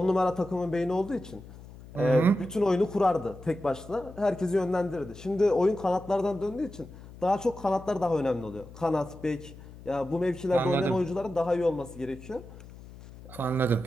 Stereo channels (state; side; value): noise; left; hum, 17 dB below the sound